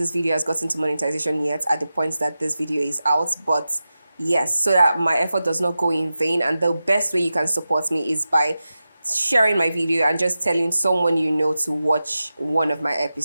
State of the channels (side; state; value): both; inverted; correlation -0.93